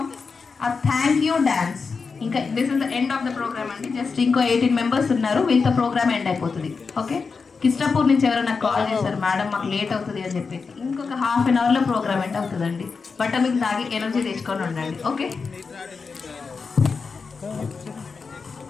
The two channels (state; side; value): quieter; right; 4.9 dB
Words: a thank you dance. ఇంకా this is the end of the programme అండి. జస్ట్ ఇంకో 18 మెంబర్స్ ఉన్నారు, వీళ్ళతో ప్రోగ్రామ్ ఎండ్ అయిపోతుంది. ఓకే, కిస్టాపూర్ నుంచి ఎవరైనా కాల్ చేశారు, మేడం మాకు లేట్ అవుతుంది అని చెప్పేసి. ఇంకొక ½ an hourలో ప్రోగ్రామ్ ఎండ్ అవుతుందండి. బట్ట మీకు తాగి ఎనర్జీ తెచ్చుకొని ఉండండి. ఓకే,